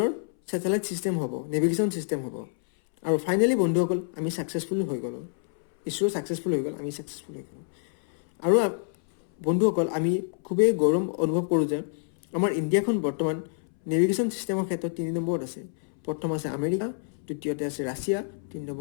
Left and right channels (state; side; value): silent; right; 60 dB below the other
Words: ছেটেলাইট ছিষ্টেম হ'ব, নেভিগেশ্যন ছিষ্টেম হ'ব। আৰু ফাইনেলি বন্ধুসকল, আমি ছাকচেছফুল হৈ গ'লোঁ। ইছৰো ছাকচেছফুল হৈ গ'ল, আমি ছাকচেছফুল হৈ গ'লোঁ। আৰু বন্ধুসকল, আমি খুবেই গৌৰৱ অনুভৱ কৰোঁ যে আমাৰ ইণ্ডিয়াখন বৰ্তমান নেভিগেশ্যন ছিষ্টেমৰ ক্ষেত্ৰত 3 নম্বৰত আছে। প্ৰথম আছে আমেৰিকা, দ্বিতীয়তে আছে ৰাছিয়া, 3